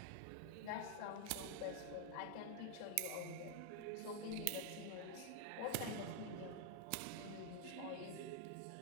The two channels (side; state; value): both; different; correlation 0.00